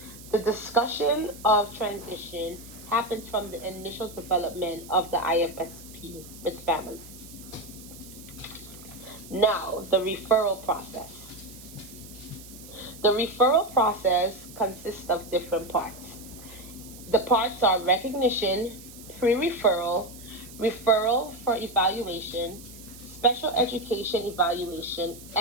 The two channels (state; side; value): noise; right; hiss, 18 dB below the sound